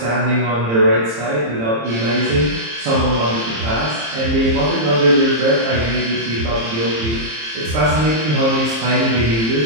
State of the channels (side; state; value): left; late; 26 ms